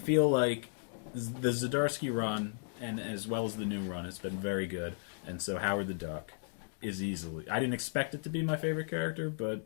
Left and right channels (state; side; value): silent; right; digital silence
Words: like the Zdarsky run, and as well as the new run, has been very good. And so Howard the Duck is easily... I didn't expect it to be my favorite character, but